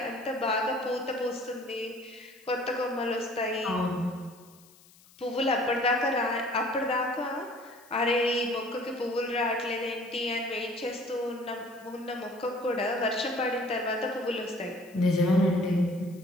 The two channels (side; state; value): left; noise; hiss, 26 dB below the sound